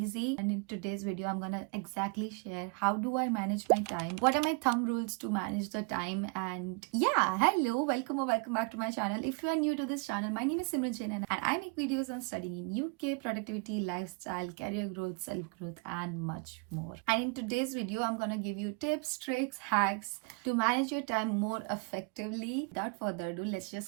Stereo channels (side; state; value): left; quieter; 33.8 dB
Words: And in today's video, I'm gonna exactly share how do I manage my time, what are my thumb rules to manage the time. And yeah, hello, welcome or welcome back to my channel. If you are new to this channel, my name is Simran Jain and I make videos on studying in UK, productivity, lifestyle, career growth, self-growth and much more. And in today's video, I'm gonna give you tips, tricks, hacks to manage your time more effectively. Without further ado, let's